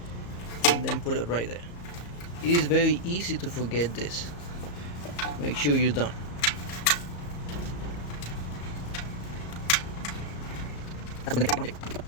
and then put it right there. It is very easy to forget this. Make sure you're done.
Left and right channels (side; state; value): right; late; 34 ms